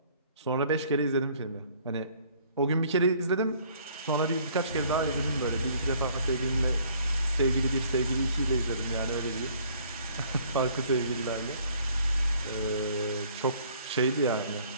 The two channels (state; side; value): inverted; both; correlation -0.59